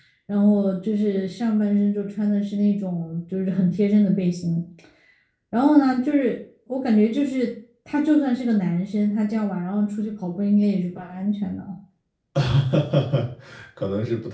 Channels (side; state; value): both; identical; correlation 1.00